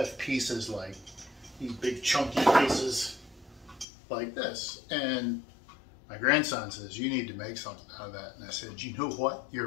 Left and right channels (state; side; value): drops out; right; at 3.9 s